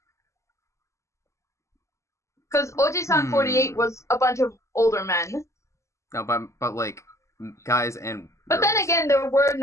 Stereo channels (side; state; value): right; late; 0.14 ms